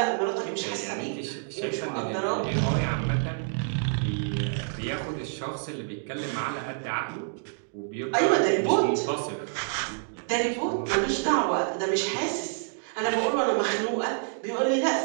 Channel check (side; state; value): left; silent; 59 dB below the other